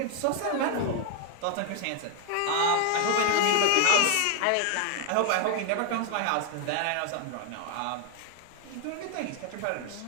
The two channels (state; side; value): different; both; correlation 0.01